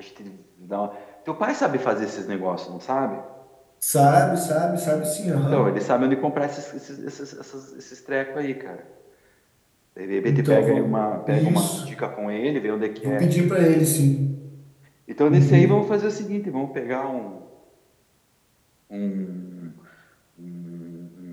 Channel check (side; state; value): both; identical; correlation 1.00